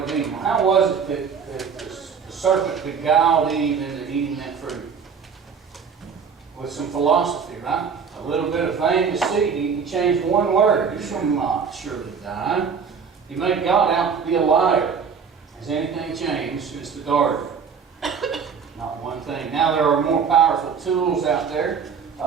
of Eden. How was it that the serpent beguiled Eve into eating that fruit? With some philosophy, right? A little bit of vain deceit. He changed one word. You shall not surely die. He made God out to be a liar. Has anything changed since the garden? Not one thing. Now there are more powerful tools out there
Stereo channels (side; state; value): left; quieter; 6.3 dB